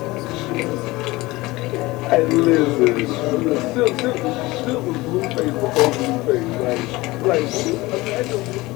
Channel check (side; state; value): right; quieter; 20.6 dB